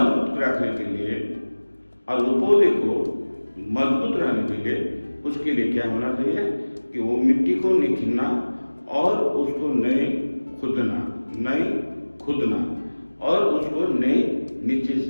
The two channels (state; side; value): inverted; both; correlation -1.00